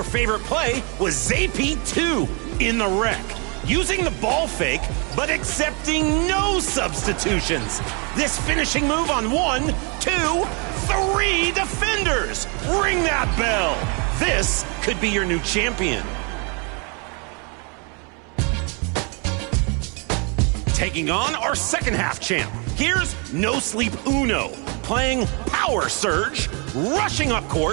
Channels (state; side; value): quieter; left; 34.4 dB